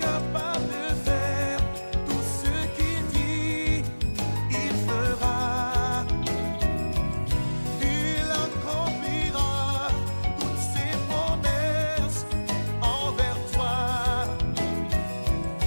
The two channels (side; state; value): both; inverted; correlation -1.00